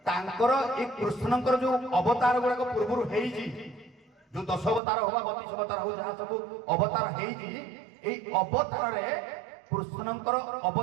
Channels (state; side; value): drops out; left; at 4.8 s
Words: ତାଙ୍କର ଏ କୃଷ୍ଣଙ୍କର ଯୋଉ ଅବତାର ଗୁଡାକ ପୂର୍ବରୁ ହେଇଛି ଯୋଉ 10 ଅବତାର ହବା 32 ଅବତାର ହଉ ଯାହା ସବୁ ଅବତାର ହେଇଛି ଏଇ ଅବତାରରେ କୃଷ୍ଣଙ୍କର